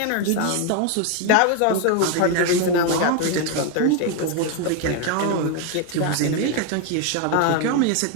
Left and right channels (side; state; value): both; different; correlation 0.01